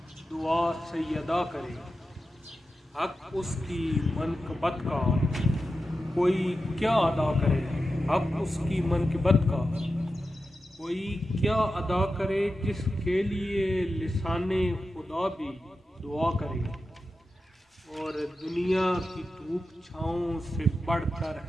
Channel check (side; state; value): both; normal; correlation 0.91